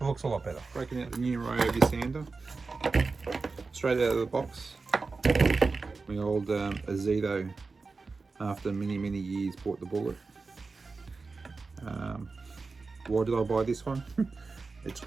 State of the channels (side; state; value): left; quieter; 4.2 dB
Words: looks a lot better. Breaking out the new Ryobi sander. Straight out of the box. My old Dado, after many years, bought the bullet. Why did I buy this one? It's